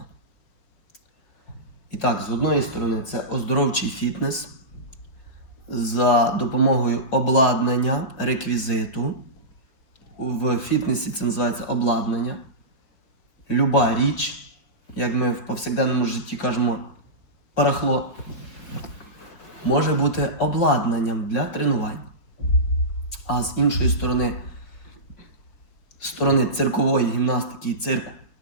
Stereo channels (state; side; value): late; right; 4.8 ms